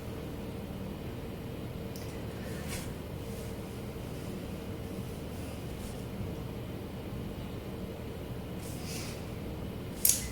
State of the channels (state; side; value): identical; both; correlation 1.00